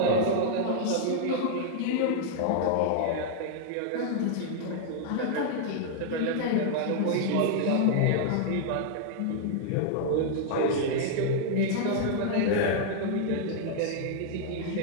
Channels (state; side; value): different; both; correlation -0.01